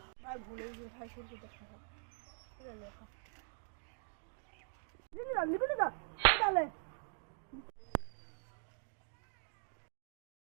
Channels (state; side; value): silent; left; digital silence